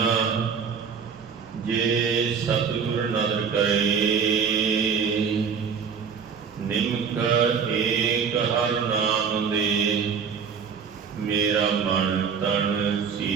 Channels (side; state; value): left; quieter; 6.5 dB